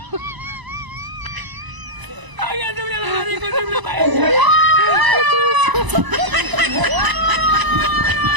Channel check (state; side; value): late; left; 1.0 ms